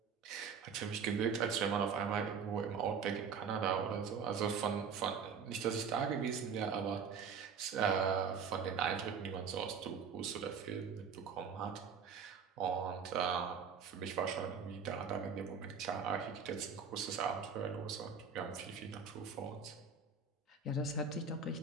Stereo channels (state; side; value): quieter; left; 6.1 dB